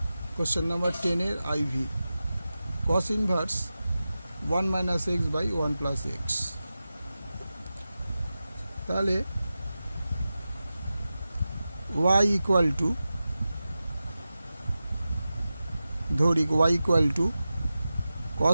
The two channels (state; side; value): inverted; both; correlation -0.94